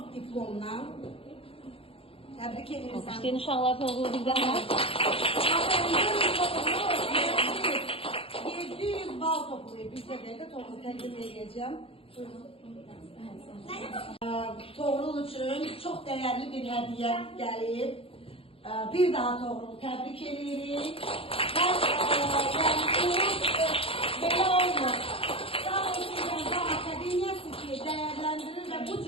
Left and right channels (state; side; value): late; right; 0.27 ms